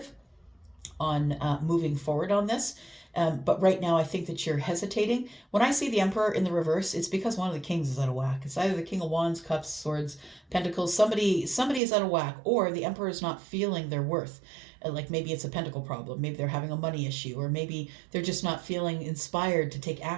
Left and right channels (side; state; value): left; drops out; at 11.8 s